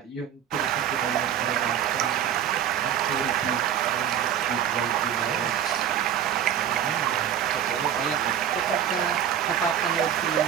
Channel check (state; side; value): quieter; left; 9.7 dB